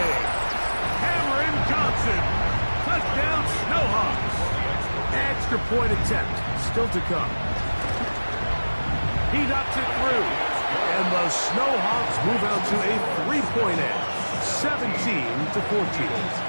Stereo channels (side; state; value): both; inverted; correlation -1.00